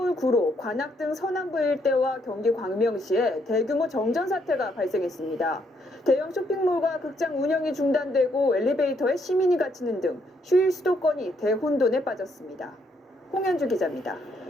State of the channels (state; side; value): normal; both; correlation 0.73